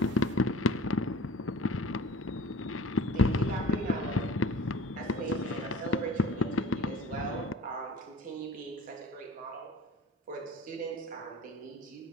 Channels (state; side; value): normal; both; correlation 0.43